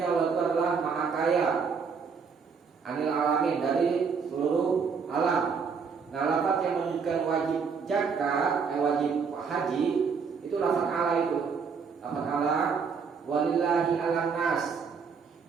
Allah itu adalah maha kaya, 'anil 'alamin, dari seluruh alam. Nah, lafaz yang menunjukkan wajib zakat, wajib haji, itu lafaz ala itu. Lafaz ala, walillahi 'alan nas.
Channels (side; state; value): left; quieter; 5.7 dB